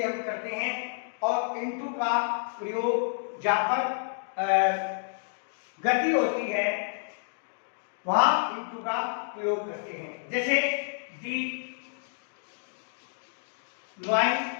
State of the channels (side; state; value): right; silent; digital silence